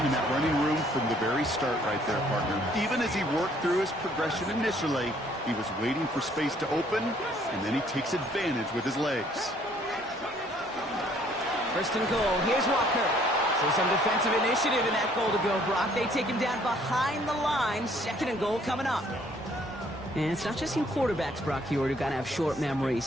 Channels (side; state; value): both; normal; correlation 0.62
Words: and that running room from the very start right there, partner. Even as he worked through his progression initially, he was waiting for space to open, and then he takes advantage with his legs. 1st and goal. Here's Walker. So some defensive initiative in that goal to go, Brock. They take him down behind the line. 2nd and goal coming up. And it's not just you quarterbacks, Brock Huard, who got to have short